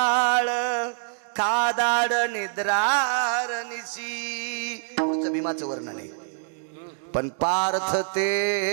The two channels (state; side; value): silent; left; digital silence